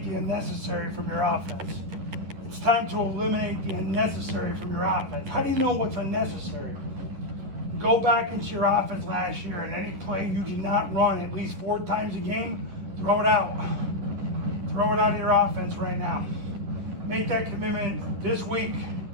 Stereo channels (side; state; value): left; late; 11 ms